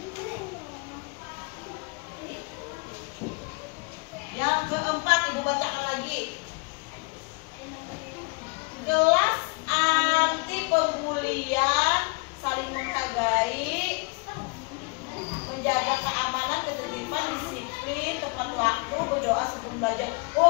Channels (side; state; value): right; quieter; 31.3 dB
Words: Yang keempat, Ibu bacakan lagi. Kelas anti pembulian, saling menghargai, menjaga keamanan, ketertiban, disiplin, tepat waktu, berdoa sebelum belajar.